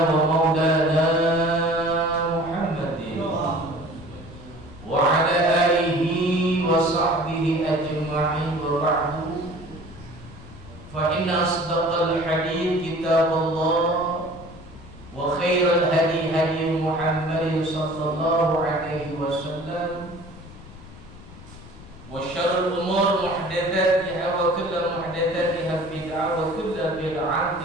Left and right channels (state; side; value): noise; left; rumble, 18 dB below the sound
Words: wa maulana Muhammadin wa ala alihi wa sahbihi ajma'in wa ba'du. Fa inna asdaqal hadits kitabullah wa khairal hadi hadi Muhammadin sallallahu alaihi wasallam wa syarrul umur muhdatsatiha wa kullu muhdatsatiha bid'ah wa kullu